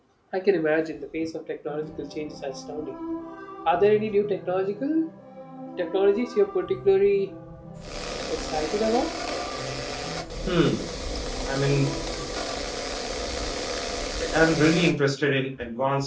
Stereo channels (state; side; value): identical; both; correlation 1.00